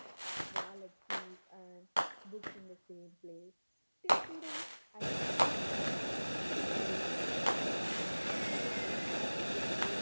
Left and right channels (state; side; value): inverted; both; correlation -1.00